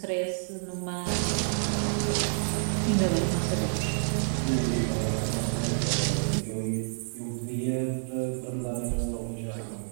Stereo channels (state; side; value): silent; left; 59 dB below the other